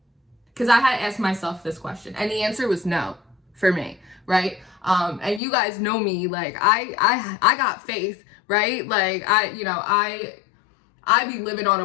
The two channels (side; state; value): right; drops out; at 5.4 s